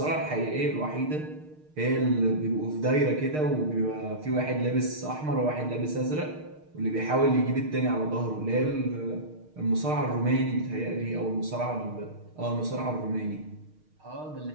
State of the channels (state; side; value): late; left; 6.5 ms